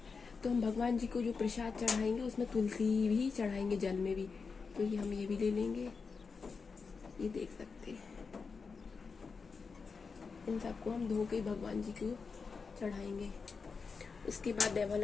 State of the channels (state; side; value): quieter; right; 5.0 dB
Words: तो हम भगवान जी को जो प्रसाद चढ़ाएंगे उसमें तुलसी भी चढ़ाएंगे, जल में भी। तो ये हम ये भी ले लेंगे, ये देख सकते हैं। इन सबको हम धो के भगवान जी को चढ़ाएंगे। उसके बाद देवा